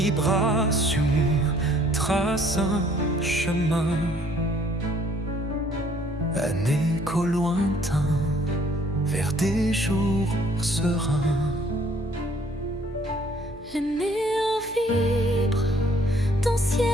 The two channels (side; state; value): left; noise; hum, 21 dB below the sound